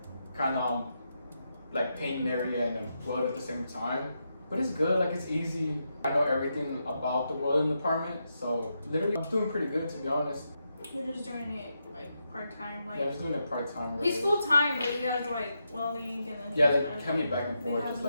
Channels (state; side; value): inverted; both; correlation -0.84